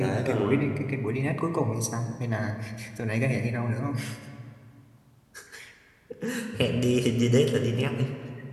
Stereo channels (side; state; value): both; identical; correlation 1.00